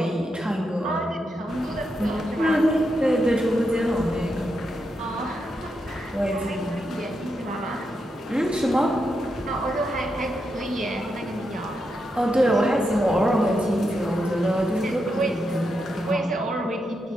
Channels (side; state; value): both; normal; correlation 0.84